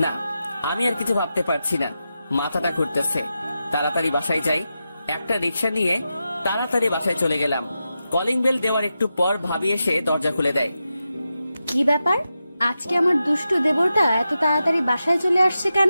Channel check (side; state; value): both; inverted; correlation -0.90